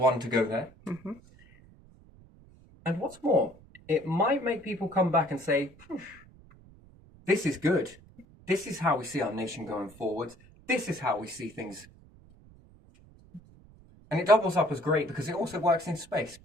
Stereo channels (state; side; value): noise; right; rumble, 24 dB below the sound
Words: to go there. And what's more, it might make people come back and say, this is good. This is how we see our nation going forward. This is how we see things. And it doubles up as great because it also works in space.